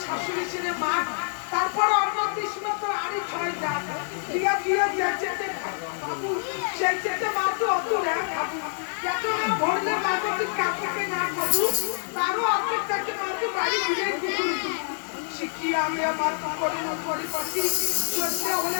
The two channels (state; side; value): silent; right; digital silence